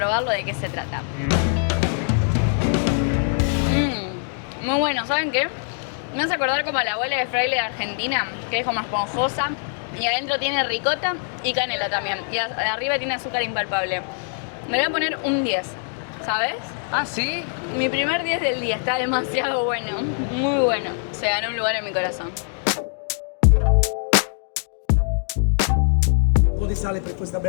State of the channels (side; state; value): right; silent; digital silence